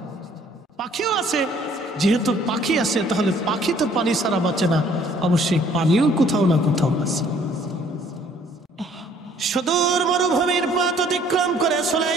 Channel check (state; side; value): normal; both; correlation 0.59